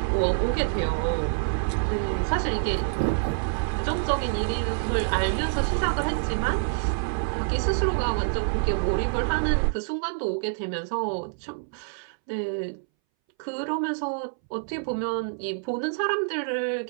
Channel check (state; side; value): silent; left; 60 dB below the other